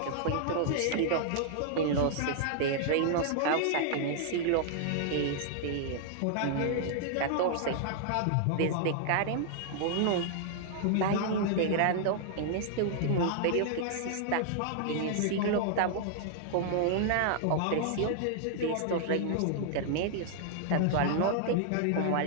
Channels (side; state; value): both; different; correlation -0.01